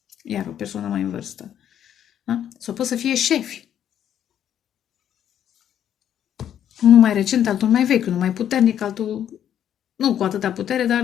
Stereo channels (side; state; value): right; quieter; 10.0 dB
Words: iar o persoană mai în vârstă. Da? Sau pot să fie șefi. Unul mai recent, altul mai vechi, unul mai puternic, altul nu cu atâta putere,